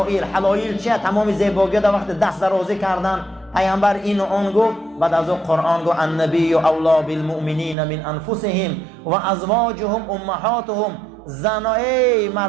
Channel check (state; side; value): drops out; left; at 7.8 s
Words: حلائل چیه؟ تمام زیباگی در وقت دست درازی کردن. پیامبر این و آن گفت. بعد از اون قرآن گفت النبی اولی بالمؤمنین من انفسهم و ازواجهم امهاتهم. زنای